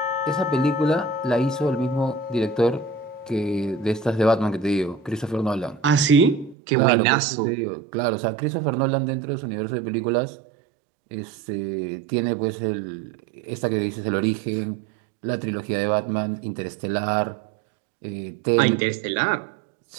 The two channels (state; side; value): drops out; left; at 6.6 s